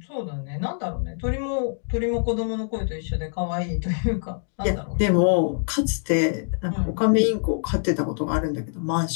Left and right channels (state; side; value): silent; right; 62 dB below the other